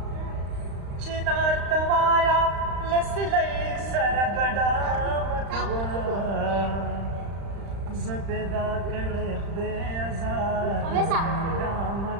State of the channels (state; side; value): late; left; 35 ms